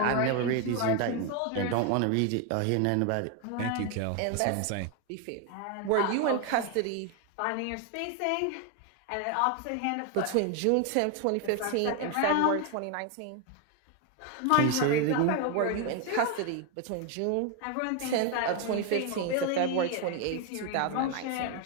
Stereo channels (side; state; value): both; different; correlation 0.01